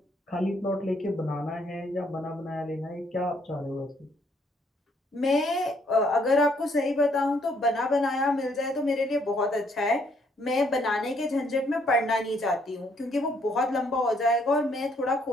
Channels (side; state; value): both; normal; correlation 0.68